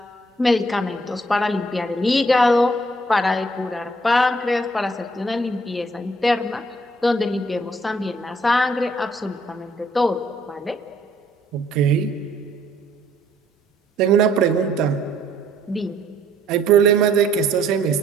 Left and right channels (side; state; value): both; normal; correlation 0.64